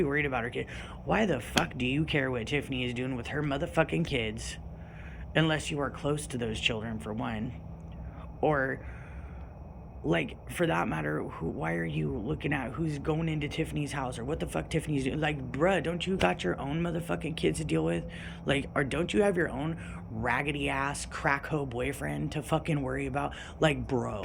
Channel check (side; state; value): both; identical; correlation 1.00